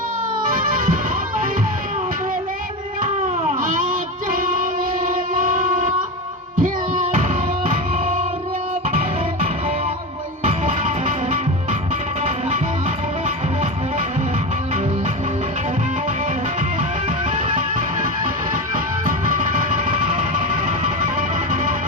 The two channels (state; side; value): normal; both; correlation 0.20